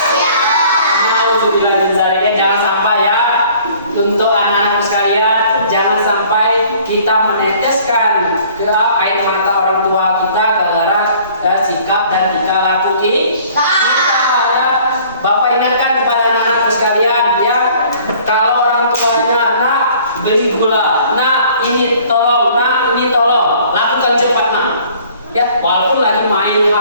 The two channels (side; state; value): both; inverted; correlation -0.54